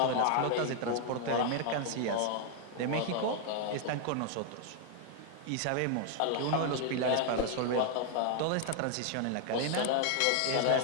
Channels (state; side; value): different; both; correlation 0.00